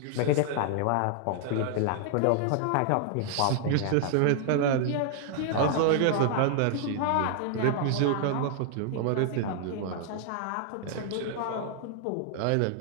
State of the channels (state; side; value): different; both; correlation 0.00